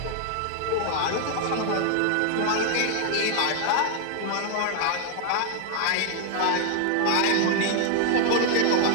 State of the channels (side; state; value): both; different; correlation 0.00